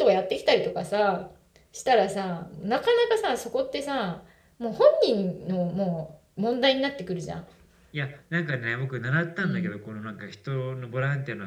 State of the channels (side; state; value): both; identical; correlation 1.00